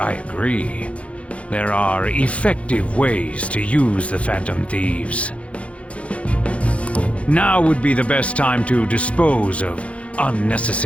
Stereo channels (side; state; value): right; late; 0.063 ms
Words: agree. There are effective ways to use the Phantom Thieves. Now would be the best time to dispose of